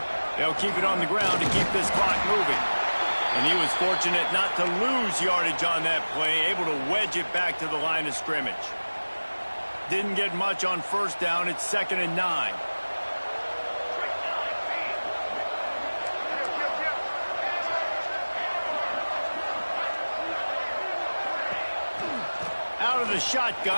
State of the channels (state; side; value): inverted; both; correlation -1.00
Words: They'll keep it on the ground to keep this clock moving. And he was fortunate not to lose yardage on that play, able to wedge it back to the line of scrimmage. Didn't get much on first down. It's 2nd and 9. Out of the